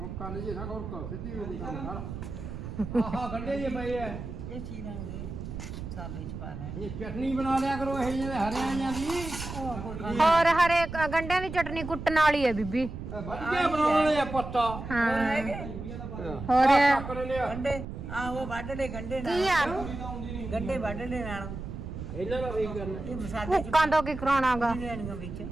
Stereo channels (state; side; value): noise; right; rumble, 8 dB below the sound